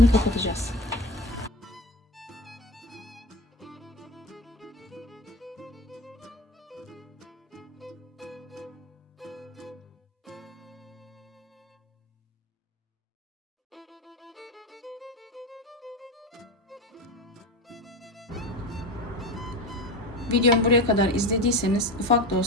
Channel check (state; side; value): normal; both; correlation 0.26